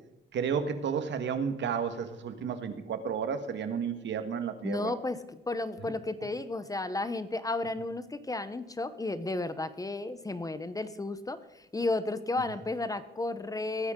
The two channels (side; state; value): both; normal; correlation 0.53